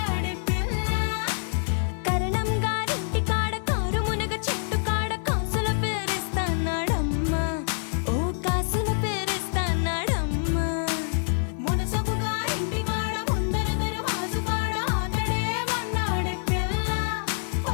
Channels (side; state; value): right; silent; digital silence